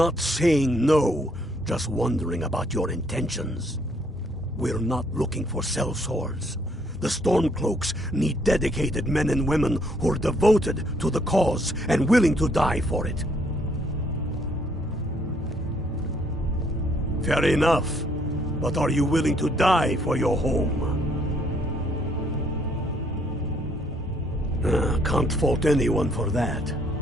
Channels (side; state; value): both; normal; correlation 0.67